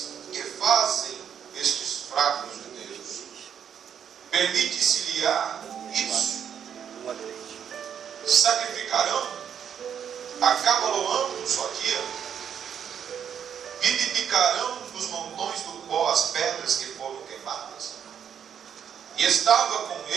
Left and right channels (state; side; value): quieter; left; 8.3 dB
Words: que fazem estes fracos judeus? Permite-se-lhe-á isso? Sacrificarão? Acabaloão um só dia? Vivificarão nos montões do pó as pedras que foram queimadas? E estava com